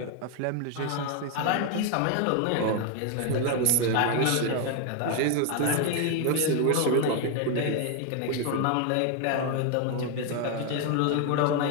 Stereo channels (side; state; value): both; different; correlation 0.01